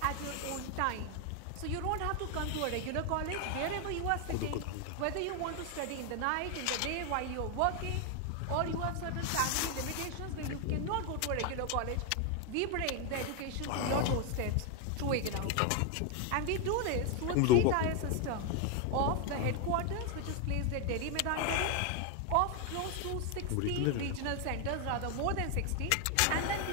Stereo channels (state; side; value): different; both; correlation 0.01